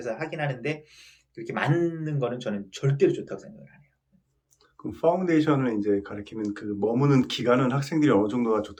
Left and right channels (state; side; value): identical; both; correlation 1.00